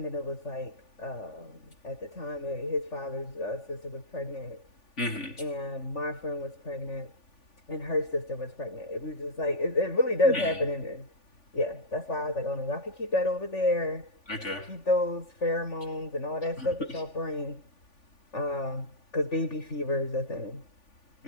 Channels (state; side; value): late; right; 3.5 ms